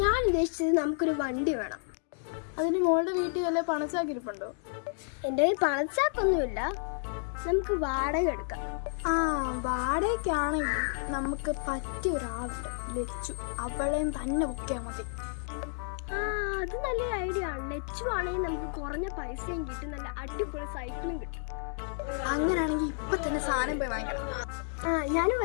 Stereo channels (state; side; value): silent; right; 57 dB below the other